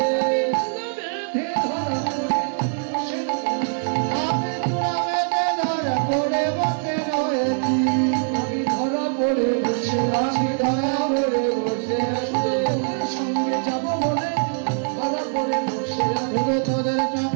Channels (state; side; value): silent; left; 64 dB below the other